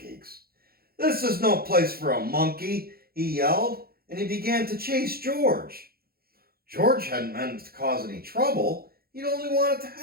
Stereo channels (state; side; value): late; left; 0.44 ms